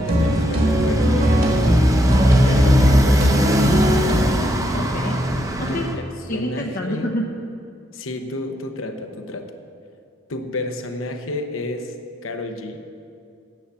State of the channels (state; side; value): normal; both; correlation 0.79